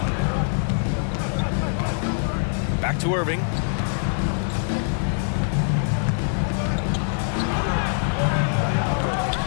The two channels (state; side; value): silent; right; digital silence